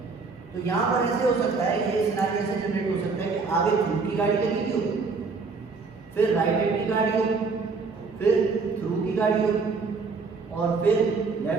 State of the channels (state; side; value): quieter; left; 4.6 dB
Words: तो यहाँ पर ऐसे हो सकता है, ये सिनेरियो ऐसे जनरेट हो सकता है कि आगे थ्रू की गाड़ी लगी हो, फिर राइट हैंड की गाड़ी हो, फिर थ्रू की गाड़ी हो और फिर